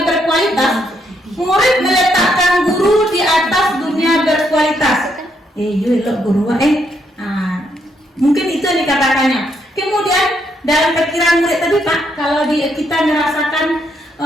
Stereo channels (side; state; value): both; normal; correlation 0.75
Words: berkualitas, murid meletakkan guru di atas dunia berkualitas. Mungkin itu yang dikatakannya. Kemudian dalam pikiran murid tadi Pak, kalau kita merasakan